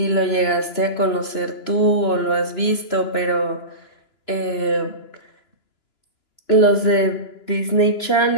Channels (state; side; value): late; right; 2.9 ms